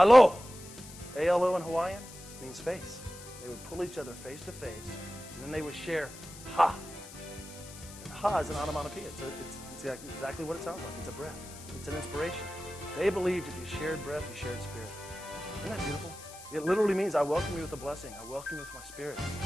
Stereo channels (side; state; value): left; noise; hiss, 16 dB below the sound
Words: A-L-O in Hawaiian means face. They would pull each other face to face, and then they would share ha. And ha is an onomatopoeia. It's exactly what it sounds like. It's a breath. It's an inspiration. They believed if you shared breath, you shared spirit. Isn't that beautiful? It literally means I welcome you with a blessing. I welcome you with my spirit.